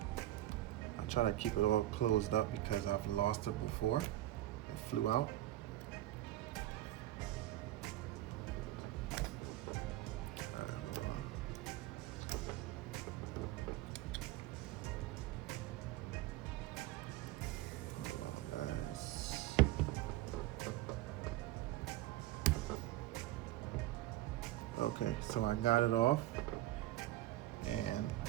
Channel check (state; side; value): quieter; left; 15.2 dB